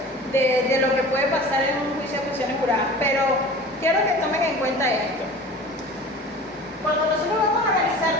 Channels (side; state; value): both; normal; correlation 0.40